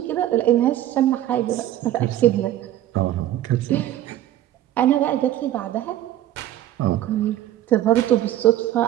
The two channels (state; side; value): quieter; left; 13.0 dB